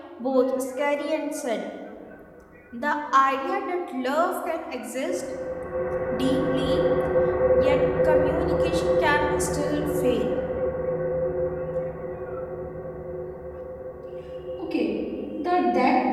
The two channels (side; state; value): both; identical; correlation 1.00